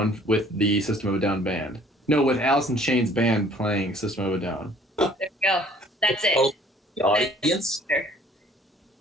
with the System of a Down band. No, with Alice in Chains band playing System of a Down. There we go. That's it. Oh, the audience.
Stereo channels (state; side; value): normal; both; correlation 0.56